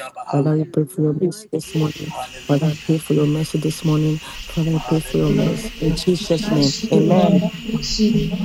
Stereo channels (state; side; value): identical; both; correlation 1.00